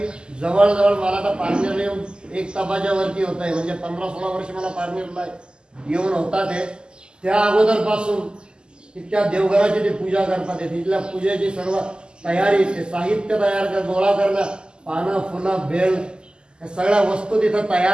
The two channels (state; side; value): late; left; 0.047 ms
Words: जवळजवळ मला तर पारनेरला येऊन 1 तासाच्या वरती होत आहे म्हणजे 15-16 वर्ष मला पारनेरला येऊन होता ते त्या अगोदरपासून तिथल्या देवघराची ते पूजा करतात तिथल्या पूजेची सर्व तयारी ते साहित्य तयार कर गोळा करणं पानं फुलं बेल या सगळ्या वस्तू तिथं